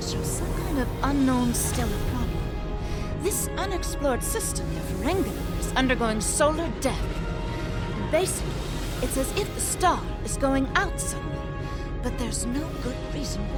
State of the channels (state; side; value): identical; both; correlation 1.00